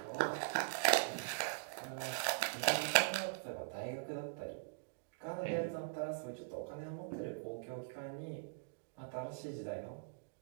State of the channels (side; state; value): left; silent; digital silence